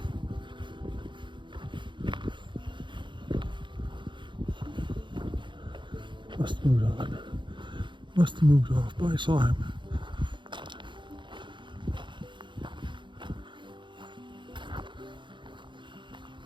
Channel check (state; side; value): late; left; 0.23 ms